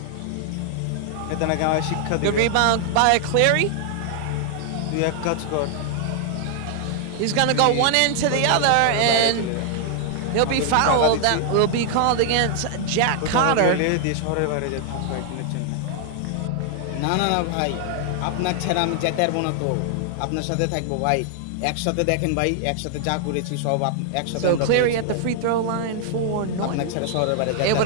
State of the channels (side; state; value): both; different; correlation 0.00